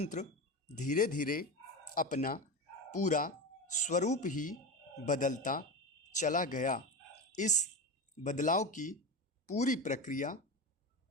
धीरे धीरे अपना पूरा स्वरूप ही बदलता चला गया। इस बदलाव की पूरी प्रक्रिया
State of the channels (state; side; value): normal; both; correlation 0.22